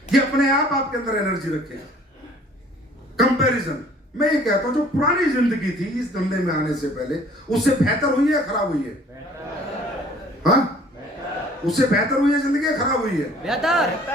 ये अपने आप आपके अंदर एनर्जी रखेगा। कंपैरिजन, मैं ये कहता हूं जो पुरानी जिंदगी थी इस धंधे में आने से पहले, उससे बेहतर हुई है खराब हुई है? हाँ, उससे बेहतर हुई है जिंदगी, खराब हुई है?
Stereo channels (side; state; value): both; normal; correlation 0.54